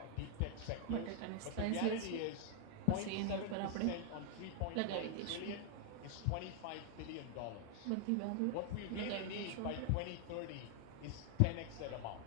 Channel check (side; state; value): both; different; correlation 0.00